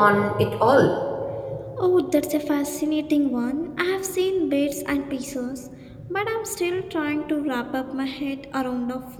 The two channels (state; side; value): identical; both; correlation 1.00